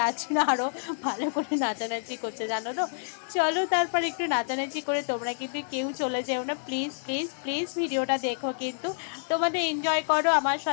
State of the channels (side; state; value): right; silent; 59 dB below the other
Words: জন্য আরও ভালো করে নাচানাচি করছে, জানো তো। চলো তারপর একটু নাচানাচি করে, তোমরা কিন্তু কেউ চলে যেও না প্লিজ প্লিজ প্লিজ, ভিডিওটা দেখো কিন্তু, তোমাদের এনজয় করো, আমার